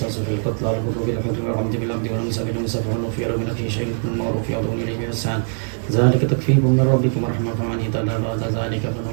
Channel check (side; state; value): left; silent; 59 dB below the other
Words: في القتلى الحر بالحر والعبد بالعبد والأنثى بالأنثى فمن عفي له من أخيه شيء بالمعروف يعظم إليه بإحسان ذلك تخفيف من ربكم ورحمة فمن اهتدى بعد ذلك فله